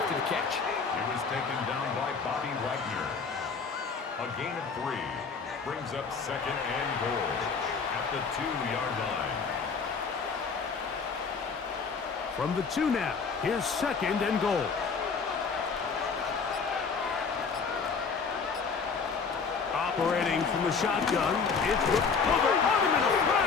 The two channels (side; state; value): right; quieter; 5.3 dB